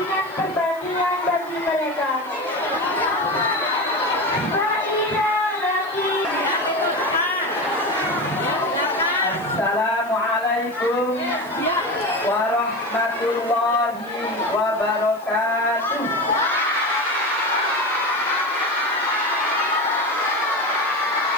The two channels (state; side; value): noise; left; hiss, 25 dB below the sound